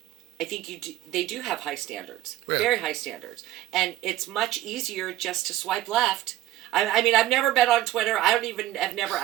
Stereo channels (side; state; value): left; quieter; 14.4 dB